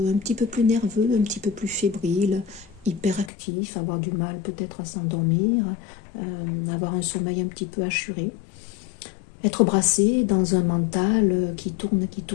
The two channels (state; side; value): drops out; right; at 3.3 s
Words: petit peu plus nerveux, un petit peu plus fébrile, hyperactif, avoir du mal peut-être à s'endormir, avoir un sommeil un petit peu assuré. Être brassé dans un mental qui tourne